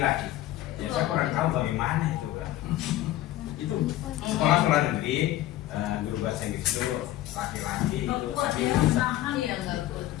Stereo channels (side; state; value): right; quieter; 14.5 dB